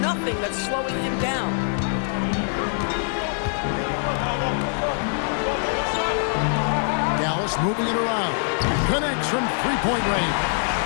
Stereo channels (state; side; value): silent; right; 63 dB below the other